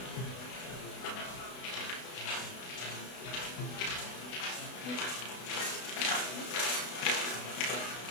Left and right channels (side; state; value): right; late; 32 ms